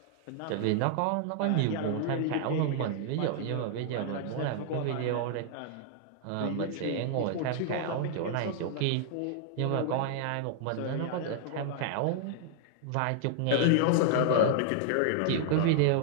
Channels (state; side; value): different; both; correlation -0.01